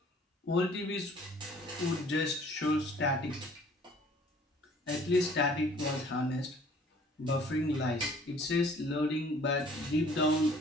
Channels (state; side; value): normal; both; correlation 0.54